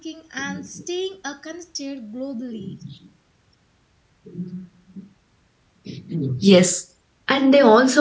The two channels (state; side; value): identical; both; correlation 1.00